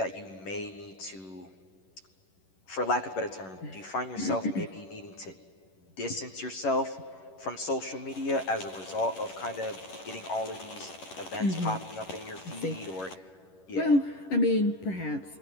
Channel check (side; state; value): right; late; 11 ms